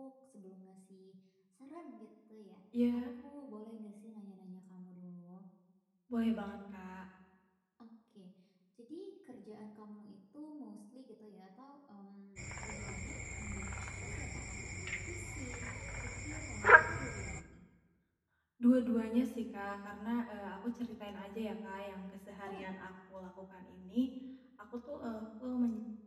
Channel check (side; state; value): both; identical; correlation 1.00